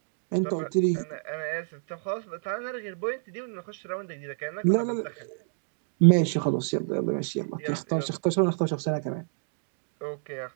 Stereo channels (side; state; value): left; silent; digital silence